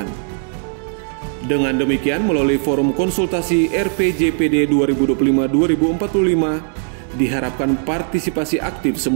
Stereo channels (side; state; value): left; silent; 58 dB below the other